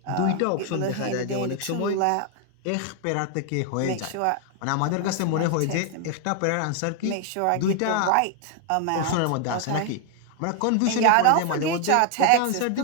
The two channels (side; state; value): both; different; correlation 0.00